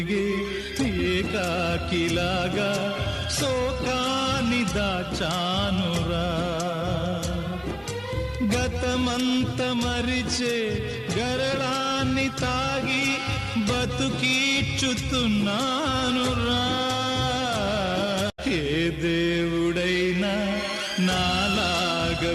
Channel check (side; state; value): both; identical; correlation 1.00